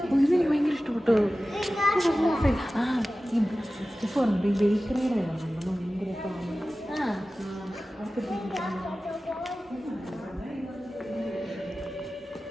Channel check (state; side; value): normal; both; correlation 0.96